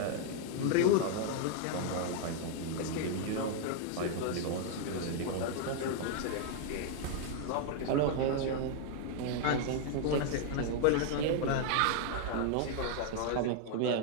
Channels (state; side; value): different; both; correlation 0.00